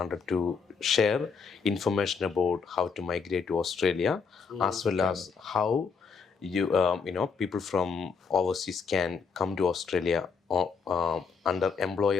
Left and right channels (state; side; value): quieter; right; 5.5 dB